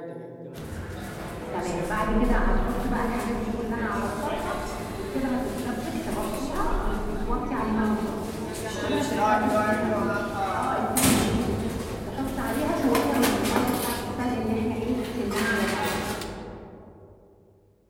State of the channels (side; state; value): both; identical; correlation 1.00